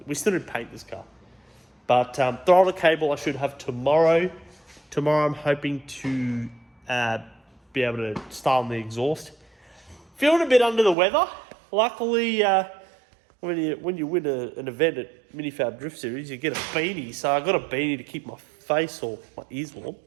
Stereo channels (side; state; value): left; drops out; at 11.0 s